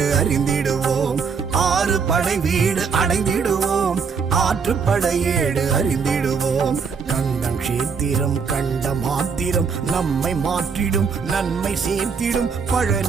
அறிந்திடுவோம் ஆறு படை வீடு அடைந்திடுவோம் ஆற்றுப்படையேடு அறிந்திடுவோம் கண்டம் கஷேத்திரம் கண்ட மாத்திரம் நம்மை மாற்றிடும் நன்மை சேர்த்திடும்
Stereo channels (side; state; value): left; quieter; 5.7 dB